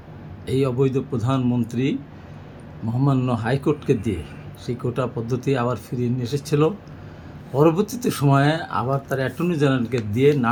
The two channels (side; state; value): both; identical; correlation 1.00